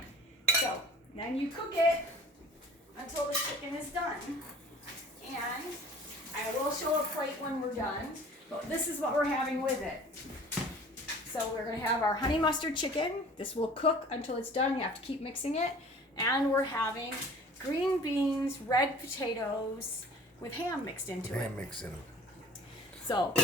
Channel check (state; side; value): normal; both; correlation 0.46